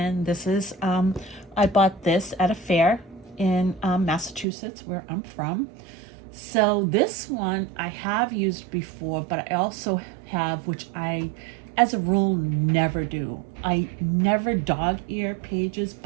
this is, I bought this at a fair in Massachusetts, where I'm from. So this one I have used before, but I also have, which I, as a rule, never do. I never dog ear pages,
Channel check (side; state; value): left; drops out; at 4.5 s